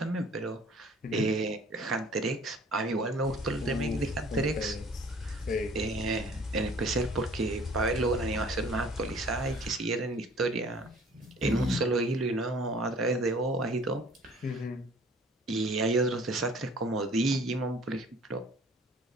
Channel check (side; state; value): both; normal; correlation 0.51